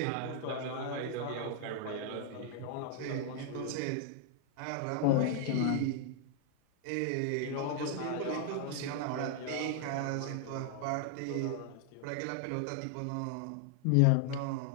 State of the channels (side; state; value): both; different; correlation 0.00